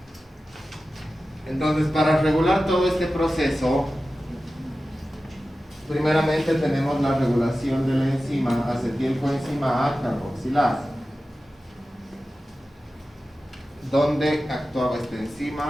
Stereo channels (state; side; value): normal; both; correlation 0.94